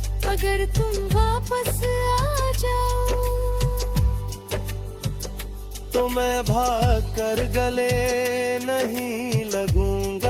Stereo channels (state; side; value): identical; both; correlation 1.00